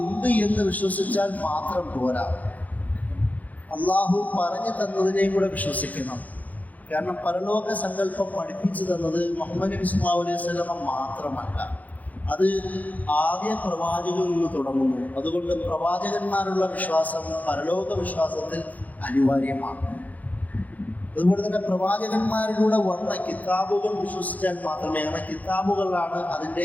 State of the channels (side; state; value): right; late; 0.078 ms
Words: ഉണ്ട് എന്ന് വിശ്വസിച്ചാൽ മാത്രം പോരാ, അള്ളാഹു പറഞ്ഞു തന്നതിനെയും കൂടെ വിശ്വസിക്കണം. കാരണം പരലോക സങ്കല്പം പഠിപ്പിച്ചു തന്നത് മുഹമ്മദ് നബി സല്ലല്ലാഹു അലൈഹി വസല്ലം മാത്രമല്ല, അത് ആദ്യ പ്രവാചകനിൽ നിന്ന് തുടങ്ങുന്നു. അതുകൊണ്ട് പ്രവാചകന്മാരുള്ള വിശ്വാസം പരലോക വിശ്വാസത്തിൽ അനിവാര്യമാണ്. അതുപോലെ തന്നെ പ്രവാചകന്മാരിലൂടെ വന്ന കിതാബുകൾ വിശ്വസിച്ചാൽ മാത്രമേ, അങ്ങനെ കിതാബുകളാണ് അതിൻ്റെ